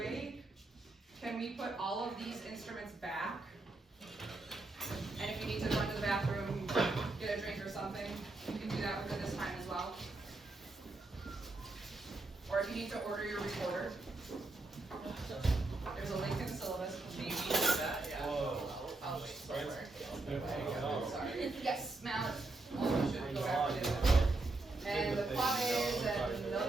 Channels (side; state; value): left; quieter; 3.1 dB